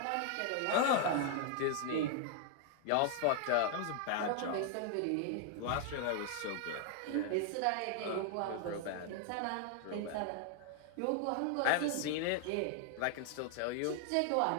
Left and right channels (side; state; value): both; different; correlation 0.00